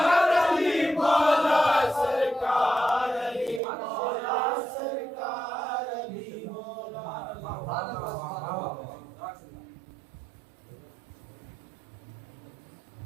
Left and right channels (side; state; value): left; drops out; at 3.6 s